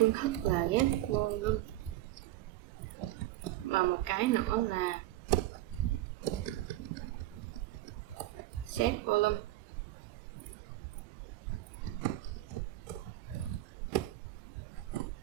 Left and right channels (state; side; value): quieter; left; 15.3 dB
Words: thức là get volume và một cái nữa là set volume.